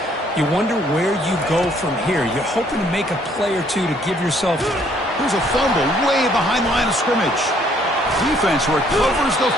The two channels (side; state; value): both; normal; correlation 0.64